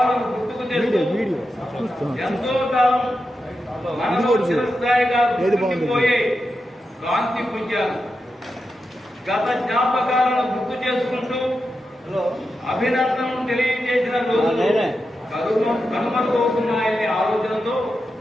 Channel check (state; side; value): normal; both; correlation 0.88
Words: గుర్తుకు తెస్తూ ఎంతో కాలం మనలో చిరస్థాయిగా గుర్తుండిపోయే కాంతి పుంజాలు. గత జ్ఞాపకాలను గుర్తు చేసుకుంటూ అభినందనలు తెలియజేసిన రోజులు కనుమరుగవుతున్నాయనే ఆలోచనతో